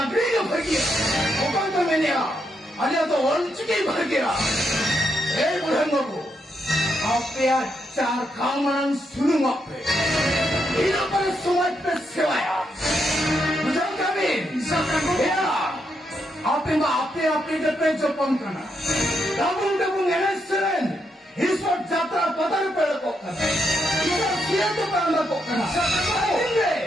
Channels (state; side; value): normal; both; correlation 0.80